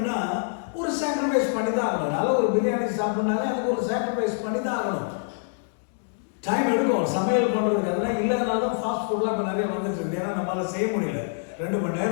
ஒரு sacrifice பண்ணி தான் ஆகணும். நல்ல ஒரு பிரியாணி சாப்பிட்னாலே அதுக்கு ஒரு சாக்ரிஃபைஸ் பண்ணி தான் ஆகணும். டைம் எடுக்கும் சமையல் பண்ணுறதுக்கு. அதெல்லாம் இல்லாதனால தான் ஃபாஸ்ட் ஃபுட்லாம் இப்போ நிறைய வந்துட்டு இருக்கு. ஏன்னா நம்மளால் செய்ய முடியல. 2 மணி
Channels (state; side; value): silent; right; digital silence